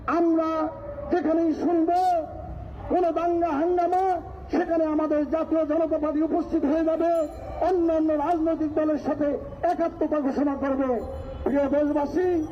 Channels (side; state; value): both; identical; correlation 1.00